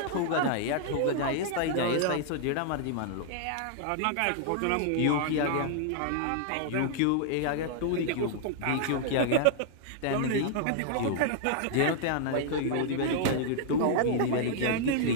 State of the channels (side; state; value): both; different; correlation -0.01